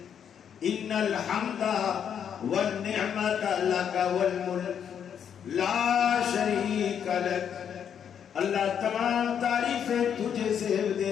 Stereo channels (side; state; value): right; quieter; 8.3 dB